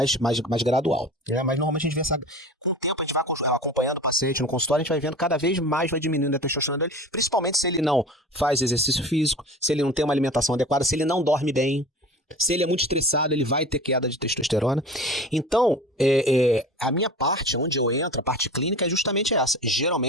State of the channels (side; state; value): both; normal; correlation 0.37